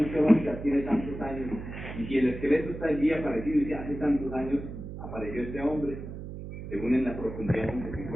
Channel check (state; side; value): noise; right; hum, 9 dB below the sound